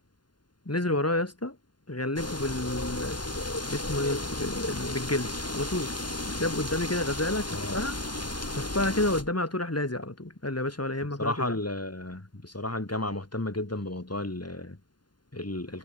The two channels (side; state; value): right; late; 0.71 ms